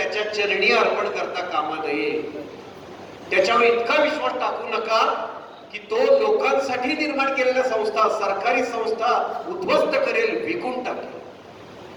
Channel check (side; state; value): both; identical; correlation 1.00